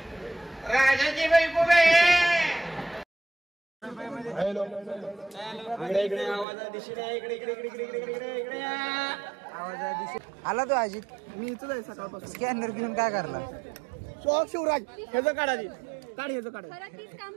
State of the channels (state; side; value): drops out; left; at 6.5 s